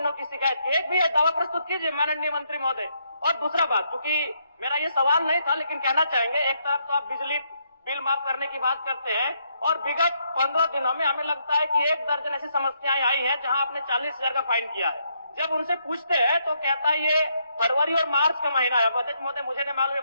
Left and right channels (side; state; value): both; inverted; correlation -0.76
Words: की शिकायत के। एक भी दावा प्रस्तुत कीजिए माननीय मंत्री महोदय। और दूसरा बात, क्योंकि मेरा ये सवाल नहीं था लेकिन कहना चाहेंगे, एक तरफ तो आप बिजली बिल माफ करने की बात करते हैं और विगत 15 दिनों में हमें लगता है कि 1 दर्जन ऐसी समस्याएं आई हैं जहां आपने 40,000 का फाइन किया है। जब उनसे पूछते हैं तो कहता है ये फरवरी और मार्च का महीना है। अध्यक्ष महोदय, मुझे नहीं मालूम